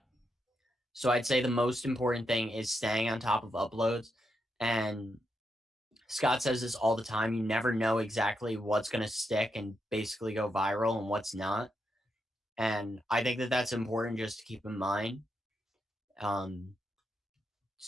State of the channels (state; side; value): normal; both; correlation 0.83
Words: So I'd say the most important thing is staying on top of uploads. And Scott says this all the time. You never know exactly what's going to stick and basically go viral and what's not. And I think that that's important just to keep in mind.